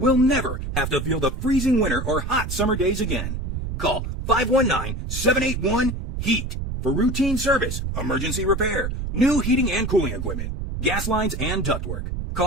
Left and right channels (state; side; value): noise; right; rumble, 4 dB below the sound